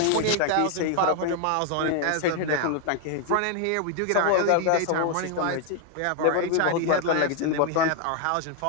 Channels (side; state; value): both; different; correlation 0.00